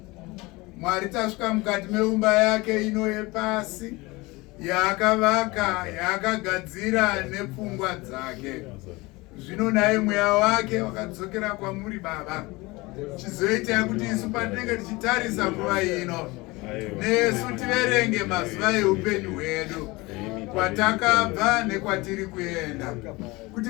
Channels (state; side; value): quieter; right; 22.9 dB